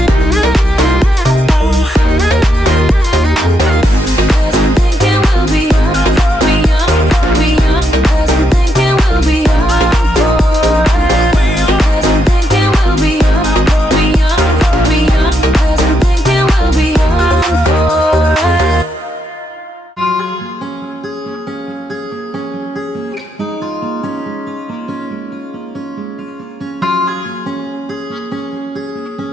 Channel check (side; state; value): both; normal; correlation 0.79